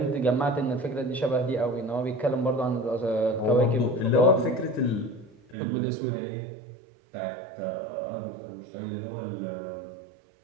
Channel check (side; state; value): left; drops out; at 5.6 s